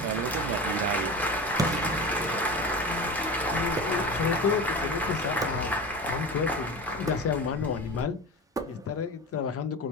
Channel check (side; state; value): both; normal; correlation 0.29